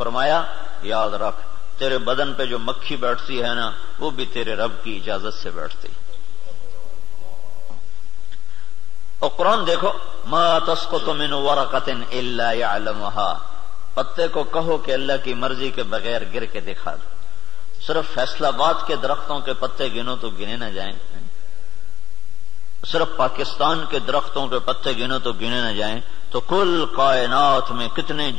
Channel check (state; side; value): quieter; right; 10.3 dB